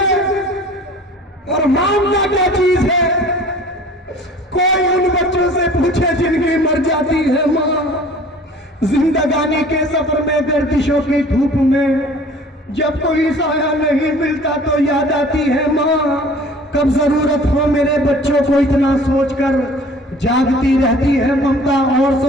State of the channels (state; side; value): normal; both; correlation 0.47